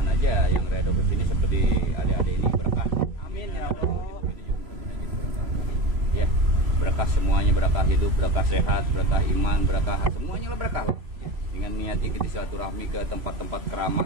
aja yang Riado kesini seperti adik-adik ini berkah. Amin ya Allah. Ya, berkah semuanya, berkah hidup, berkah sehat, berkah iman, berkah semuanya lah berkah. Dengan niatnya kita silaturahmi ke tempat-tempat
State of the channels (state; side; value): late; left; 3.0 ms